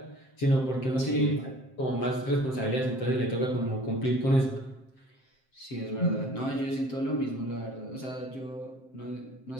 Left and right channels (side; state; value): right; late; 7.6 ms